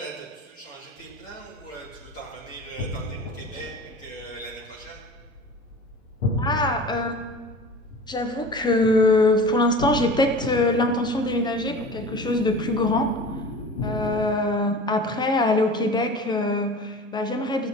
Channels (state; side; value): normal; both; correlation 0.38